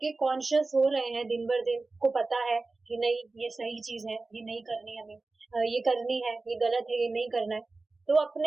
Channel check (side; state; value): left; quieter; 3.5 dB